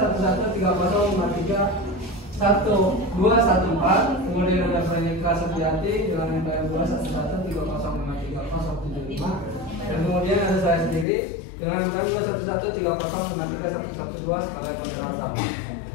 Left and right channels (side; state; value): right; drops out; at 11.1 s